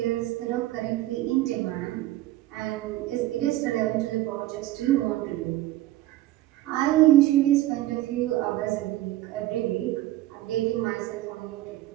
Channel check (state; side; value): quieter; left; 15.6 dB